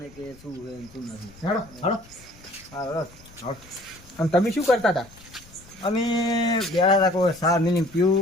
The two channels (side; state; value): left; noise; rumble, 23 dB below the sound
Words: કે શું છે શું નથી. હેડો હેડો હા. અને તમે શું કરતા હતા? અમે ગયા હતા કોઈ સાર મિલી